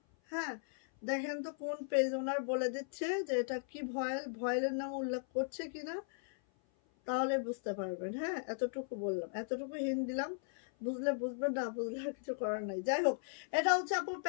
হ্যাঁ, দেখেন তো কোন পেজ ওনার বলে দিচ্ছে যে এটা কি ভয়েল, ভয়েলের নাম উল্লেখ করছে কিনা, তাহলে বুঝতে পারবেন। হ্যাঁ, এতটুকু বললাম, এতটুকু হিন্ট দিলাম, বুঝলে বুঝবেন, না বুঝলে আর কিছু করার নাই। যাই হোক, এটা হচ্ছে আপু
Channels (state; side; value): silent; right; 53 dB below the other